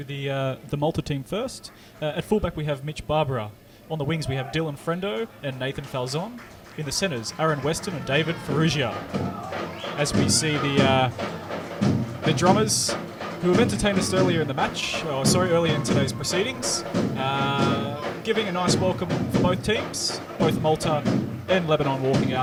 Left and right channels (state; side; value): identical; both; correlation 1.00